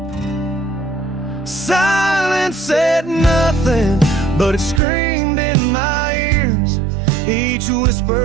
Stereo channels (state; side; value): drops out; left; at 4.8 s